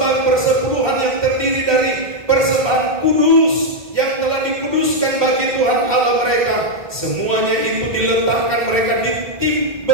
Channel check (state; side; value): late; left; 1.3 ms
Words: persepuluhan yang terdiri dari persembahan kudus yang telah dikuduskan bagi Tuhan Allah mereka, semuanya itu diletakkan mereka